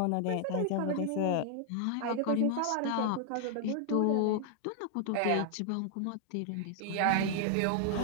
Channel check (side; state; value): both; different; correlation 0.00